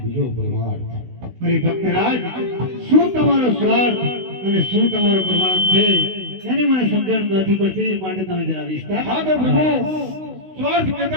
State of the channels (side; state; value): left; late; 16 ms